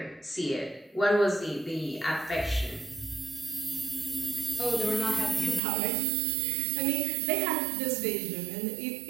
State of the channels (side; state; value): left; drops out; at 5.6 s